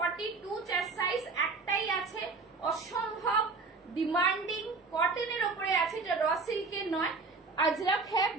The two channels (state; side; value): quieter; left; 4.1 dB